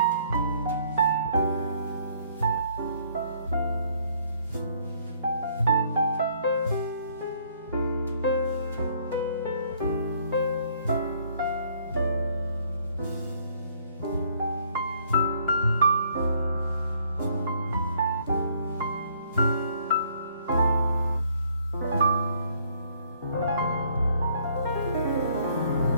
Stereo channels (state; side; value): inverted; both; correlation -0.63